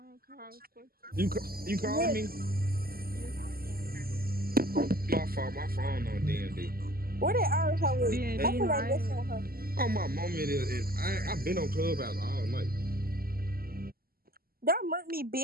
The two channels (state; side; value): late; left; 0.43 ms